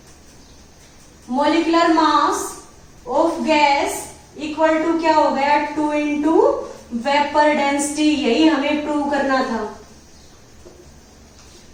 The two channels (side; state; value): both; identical; correlation 1.00